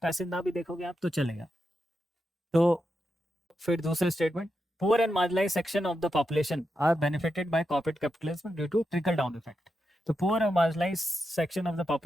पैसेज ना भी देखोगे आप तो चलेगा। तो फिर दूसरे statement, poor and marginalise section of the population are benefited by corporate capitalism due to trickle down effect. तो पुअर और marginalise section of the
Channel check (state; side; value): normal; both; correlation 0.87